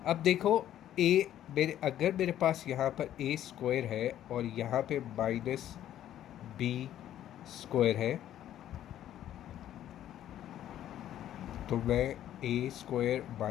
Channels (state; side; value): quieter; right; 11.7 dB